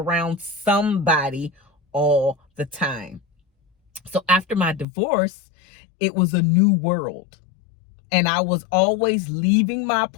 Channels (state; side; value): drops out; right; at 4.9 s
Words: somebody all the time. So after my divorce, it was a new world. And I was always leaving my